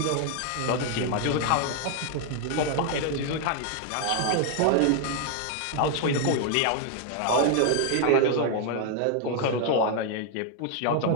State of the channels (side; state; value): both; different; correlation 0.00